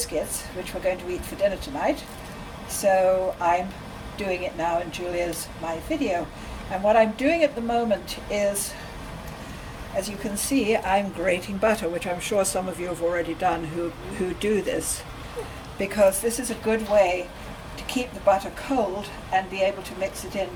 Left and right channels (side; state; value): both; identical; correlation 1.00